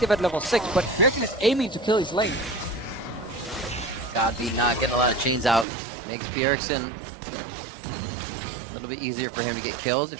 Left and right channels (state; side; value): drops out; left; at 5.7 s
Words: at level 6, but Bjergsen is aiming to kill his lane. Godby not getting a lot of chains out. Makes Bjergsen a little bit easier for him to get kills if